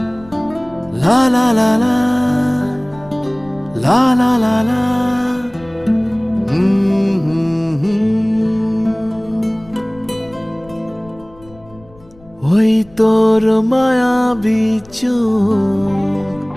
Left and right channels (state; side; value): noise; left; rumble, 25 dB below the sound